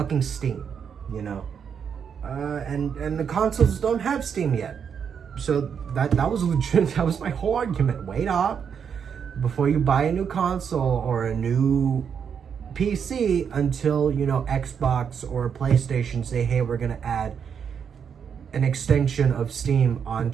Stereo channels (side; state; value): left; quieter; 7.2 dB